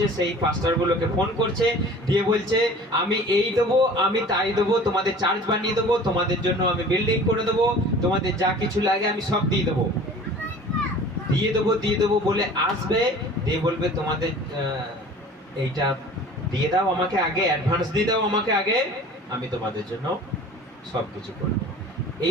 সেই পাস্টারগুলোকে ফোন করছে, দিয়ে বলছে আমি এই দেবো, আমি তাই দেবো, তোমাদের চার্চ বানিয়ে দেবো, তোমাদের জন্য আমি বিল্ডিং করে দেবো, তোমাদের যা কিছু লাগে আমি সব দিয়ে দেবো বলে আসবে, দিয়ে বলবে তোমাদের এইটা দিয়ে দাও আমাকে আগে, অ্যাডভান্স দিয়ে দাও আমাকে আগে, আমি তোমাদের জন্য সব কিছু করবো।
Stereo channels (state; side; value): normal; both; correlation 0.44